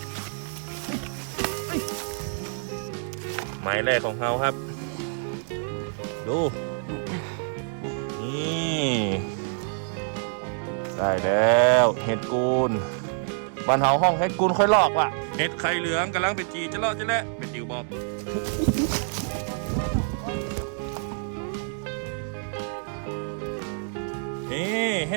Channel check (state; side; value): silent; left; digital silence